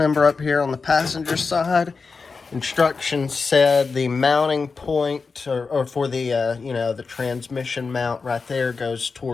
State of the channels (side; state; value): right; quieter; 4.6 dB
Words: up here on the passenger side. Instructions said the mounting point or for the the transmission mount right there goes